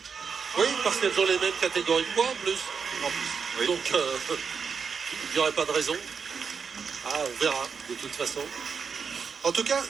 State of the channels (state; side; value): quieter; left; 5.9 dB